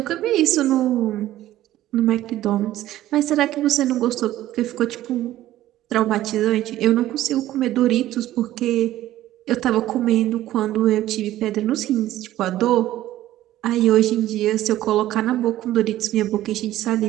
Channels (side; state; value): left; quieter; 14.2 dB